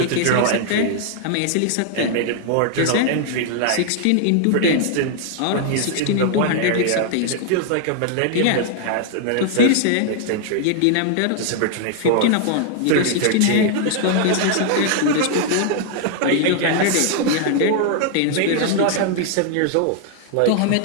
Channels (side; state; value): both; different; correlation 0.00